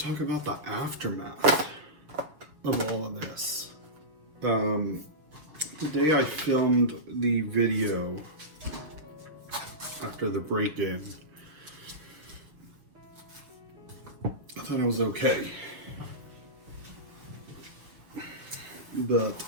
talk about the aftermath of all of this. The day I filmed the video after the break-in, I thought I was okay. But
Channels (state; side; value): late; left; 6.4 ms